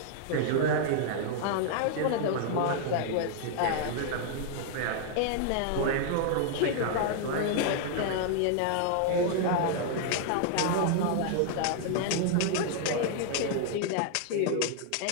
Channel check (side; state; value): both; different; correlation 0.00